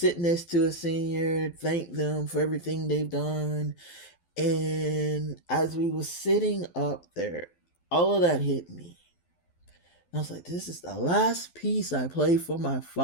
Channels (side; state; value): right; late; 12 ms